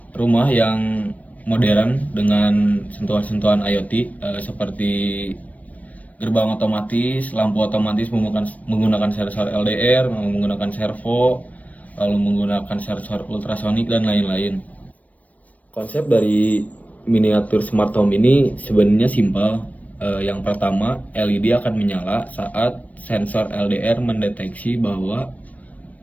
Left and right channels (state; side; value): late; right; 0.070 ms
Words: rumah yang modern dengan sentuhan-sentuhan IoT, seperti gerbang otomatis, lampu otomatis menggunakan sensor LDR, menggunakan servo, lalu menggunakan sensor ultrasonik dan lain-lain. Konsep dari miniatur smart home ini sebenarnya simpel. Yang pertama, LED akan menyala saat sensor LDR mendeteksi bahwa